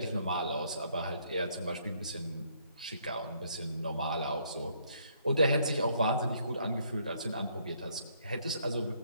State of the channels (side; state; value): both; inverted; correlation -0.68